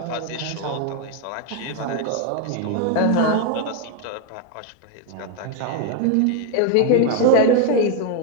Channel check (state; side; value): different; both; correlation 0.01